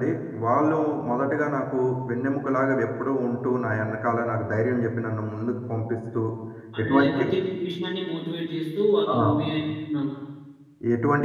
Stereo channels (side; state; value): both; identical; correlation 1.00